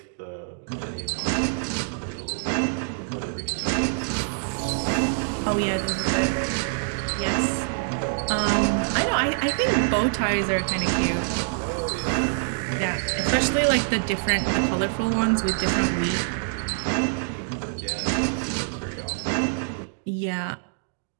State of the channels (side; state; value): left; silent; digital silence